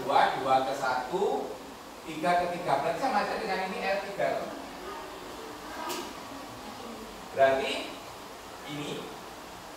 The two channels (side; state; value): both; identical; correlation 1.00